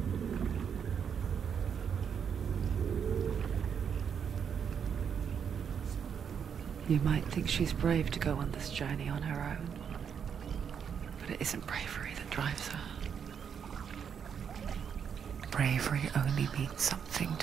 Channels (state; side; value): quieter; left; 7.4 dB